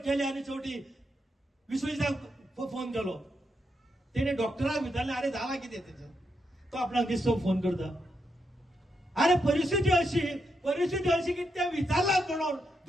आणि शेवटी विश्वजिताक फोन केलो. तेणे डॉक्टराक विचारले अरे झाला किती त्याचं. तो आपणाक दिसतो फोन करता. अरे परिस्थिती अशी की त्या विचारला म्हणून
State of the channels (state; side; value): normal; both; correlation 0.82